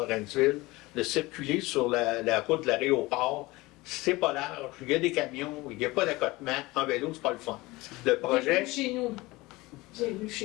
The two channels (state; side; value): quieter; right; 21.2 dB